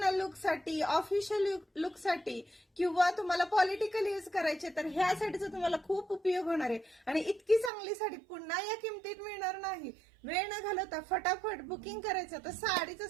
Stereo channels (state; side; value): drops out; left; at 7.7 s